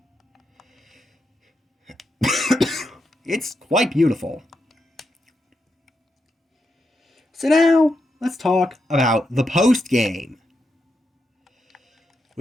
It's quite beautiful. So now, let's talk about the post-game,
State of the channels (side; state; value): both; normal; correlation 0.84